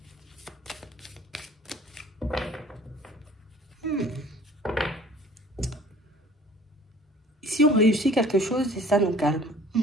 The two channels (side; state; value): both; normal; correlation 0.50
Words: Si on réussit quelque chose, et ça nous calme.